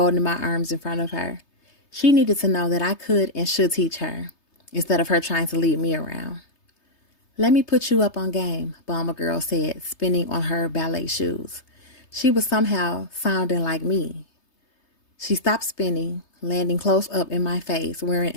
my arms in front of her. She needed to know that I could and should teach her, instead of her trying to lead me around. Let me put you up on game, Bomber Girl said, spinning on her ballet shoes. She was somehow sounding like me. She stopped spinning, landing close up in my face, wearing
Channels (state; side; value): late; right; 3.3 ms